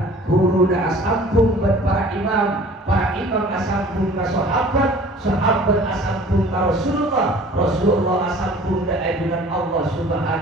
asambung para imam asambung ka sahabat asambung ka Rasulullah asambung ka ajunan Allah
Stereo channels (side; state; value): both; normal; correlation 0.47